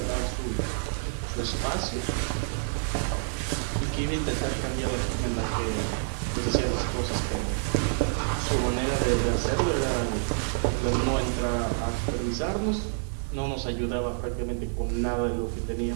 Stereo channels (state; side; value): silent; left; digital silence